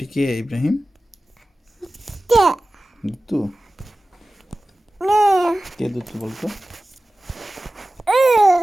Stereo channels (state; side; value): normal; both; correlation 0.96